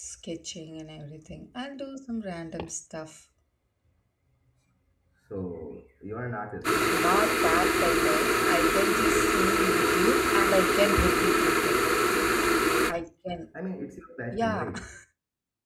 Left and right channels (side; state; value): both; identical; correlation 1.00